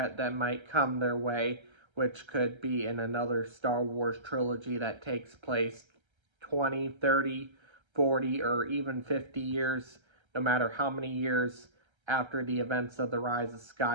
that might come their way, which could be in another Star Wars trilogy that takes place 20, 30, 40, or even 50 years, no matter how many years after the events of The Rise of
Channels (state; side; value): late; left; 1.3 ms